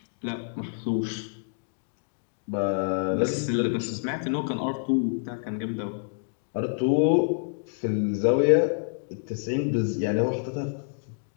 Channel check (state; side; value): silent; right; digital silence